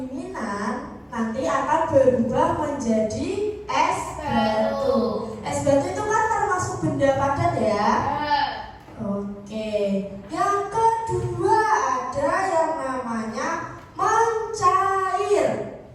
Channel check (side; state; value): both; identical; correlation 1.00